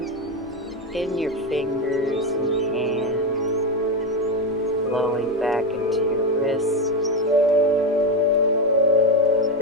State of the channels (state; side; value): normal; both; correlation 0.11